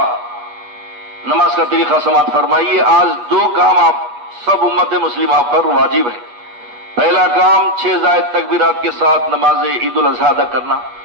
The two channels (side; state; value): left; late; 8.3 ms